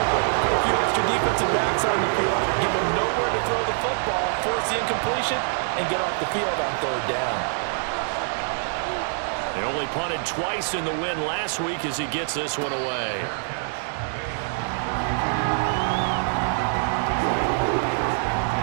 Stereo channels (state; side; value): silent; left; 62 dB below the other